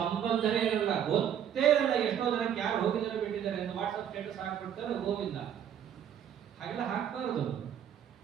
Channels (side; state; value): left; quieter; 9.3 dB